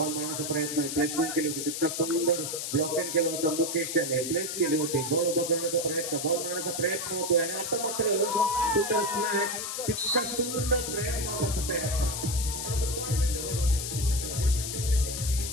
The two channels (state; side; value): noise; left; hiss, 4 dB below the sound